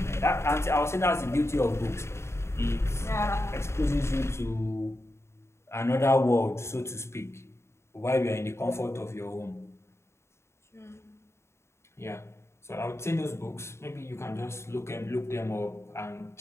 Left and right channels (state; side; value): late; right; 0.13 ms